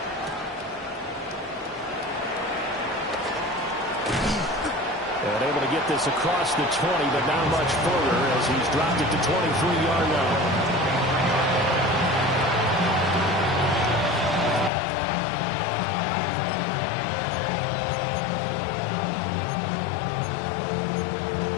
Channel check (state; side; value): drops out; right; at 14.7 s